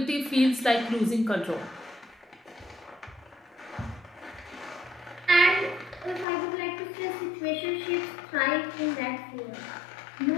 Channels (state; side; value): drops out; right; at 6.2 s